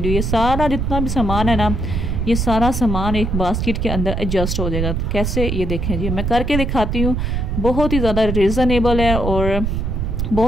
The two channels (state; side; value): noise; right; rumble, 1 dB below the sound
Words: ये सारा जितना भी सामान है ना, ये सारा सामान एक बास्केट के अंदर एडजस्ट हो जाएगा। कैसे, ये देखें जी, मैं करके दिखाती हूँ। बहुत ही ज़्यादा रिजनेबल है और